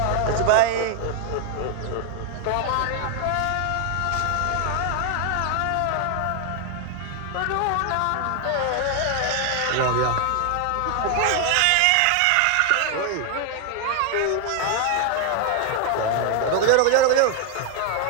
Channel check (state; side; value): different; both; correlation 0.00